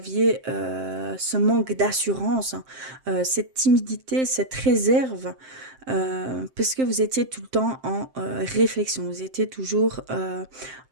ce manque d'assurance, cette timidité, cette réserve, parce que vous étiez tout le temps en réflexion. Vous étiez toujours,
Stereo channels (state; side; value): late; left; 7.6 ms